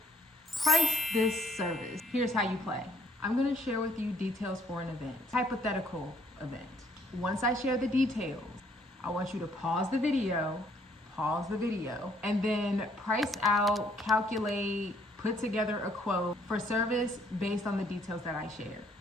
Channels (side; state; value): both; normal; correlation 0.65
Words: Price This Service. Here's how you play. I'm gonna share with you details for an event, hypothetical event. Once I share the details, I want you to pause the video, and then price out, calculate, put together a quote for service based on the details that I shared.